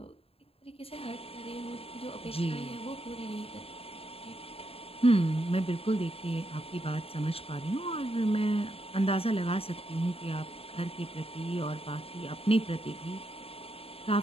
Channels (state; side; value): late; right; 0.28 ms